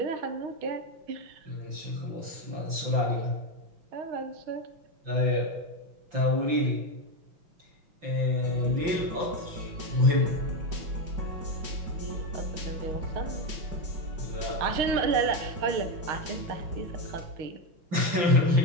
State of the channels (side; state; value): left; late; 5.8 ms